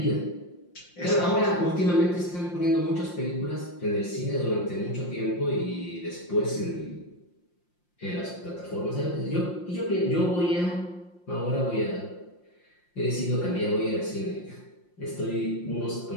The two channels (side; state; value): right; late; 5.7 ms